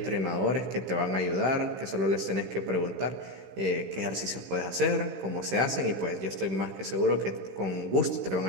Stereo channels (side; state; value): left; late; 15 ms